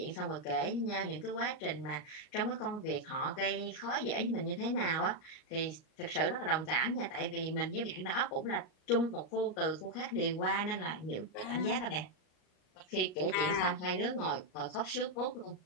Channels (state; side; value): late; right; 38 ms